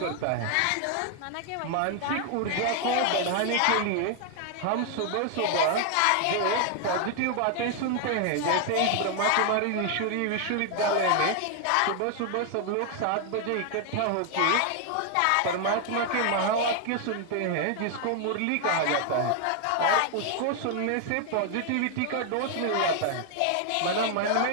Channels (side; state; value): both; different; correlation 0.00